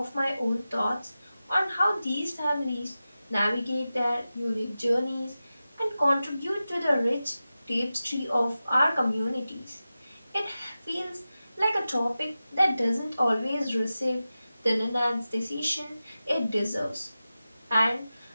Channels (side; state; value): both; inverted; correlation -0.94